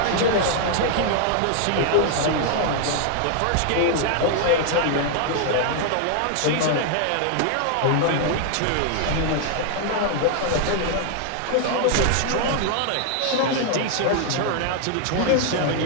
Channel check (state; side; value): different; both; correlation 0.00